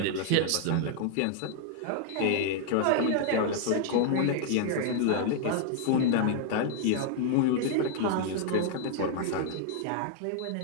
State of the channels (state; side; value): different; both; correlation 0.00